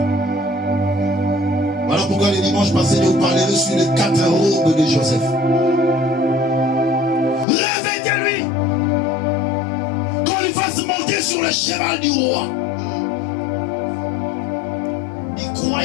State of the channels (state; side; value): drops out; right; at 7.5 s